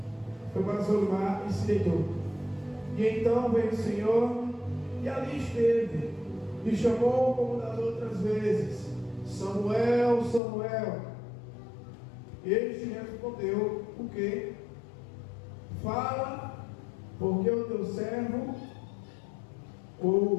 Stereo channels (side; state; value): right; drops out; at 10.4 s